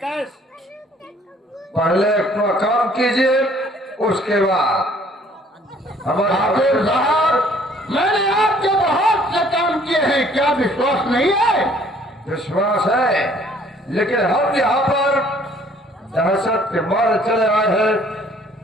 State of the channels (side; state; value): both; normal; correlation 0.59